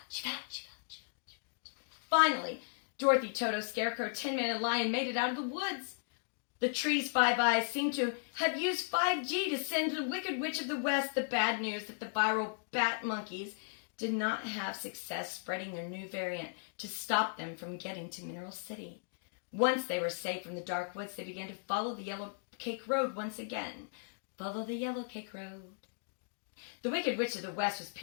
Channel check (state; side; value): silent; right; digital silence